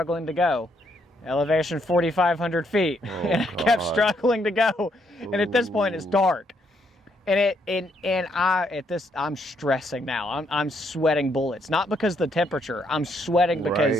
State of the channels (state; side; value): normal; both; correlation 0.73